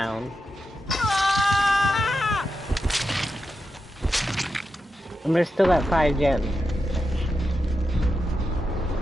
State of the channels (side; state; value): both; normal; correlation 0.88